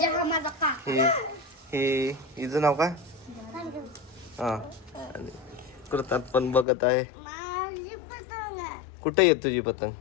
हा माझा का. हे हिचं नाव काय? हा आणि कृतात पण बघत आहे. माझी पतंग आहे. कुठे येत तुझी पतंग?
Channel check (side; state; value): right; drops out; at 6.7 s